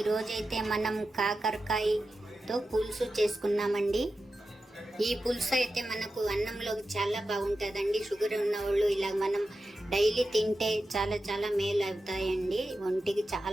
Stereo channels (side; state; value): both; normal; correlation 0.91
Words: రోజైతే మనం కాకరకాయతో పులుసు చేసుకున్నామండి. ఈ పులుసు అయితే మనకు అన్నంలోకి చాలా బాగుంటుందండి. షుగర్ ఉన్న వాళ్ళు ఇలా మనం డైలీ తింటే చాలా చాలా మేలు అవుతాయండి. ఒంటికి